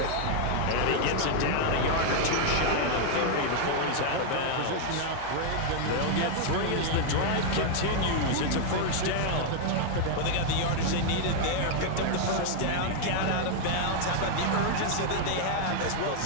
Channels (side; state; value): both; different; correlation 0.00